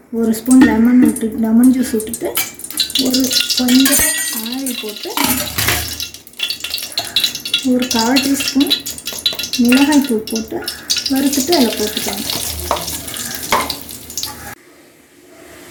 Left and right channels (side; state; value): both; identical; correlation 1.00